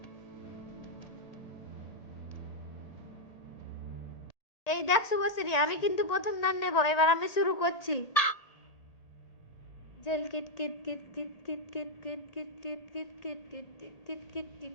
এই দেখ শুভশ্রী, আমি কিন্তু প্রথম দান নেব। এবার আমি শুরু করছি। জেল কিট কিট কিট কিট কিট কিট কিট কিট কিট কিট কিট কিট কিট কিট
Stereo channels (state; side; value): late; right; 1.8 ms